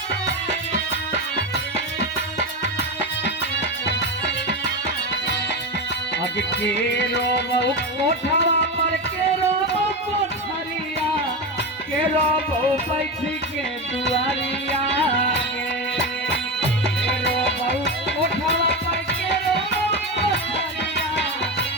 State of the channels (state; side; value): normal; both; correlation 0.17